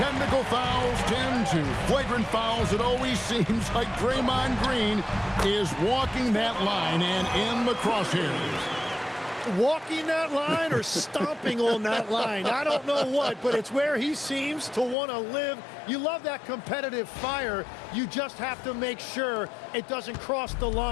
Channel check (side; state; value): right; drops out; at 15.0 s